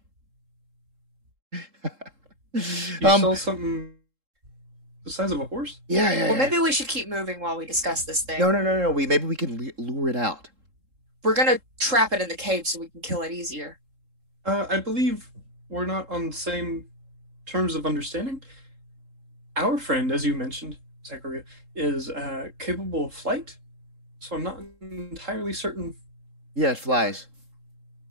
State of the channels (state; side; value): late; left; 3.7 ms